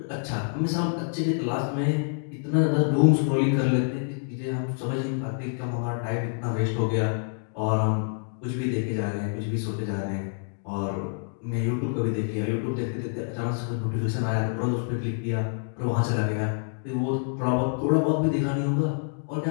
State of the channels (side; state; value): right; silent; digital silence